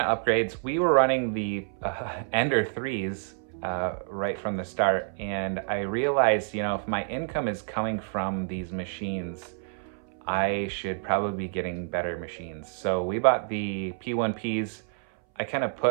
upgrades, we were running the Ender 3s right from the start, and I realized, if my income is coming from these machines, I should probably be getting better machines. So we bought the P1Ps. I kind of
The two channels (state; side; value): silent; left; 59 dB below the other